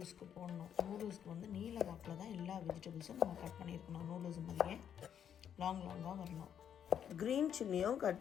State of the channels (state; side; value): quieter; right; 8.9 dB